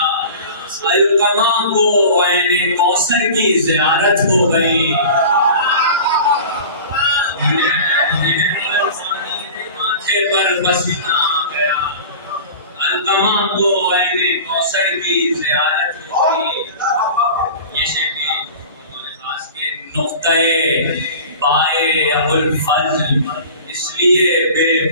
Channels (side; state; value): both; inverted; correlation -0.38